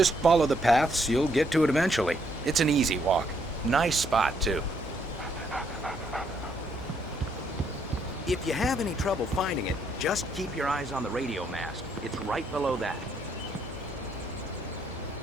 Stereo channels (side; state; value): both; normal; correlation 0.72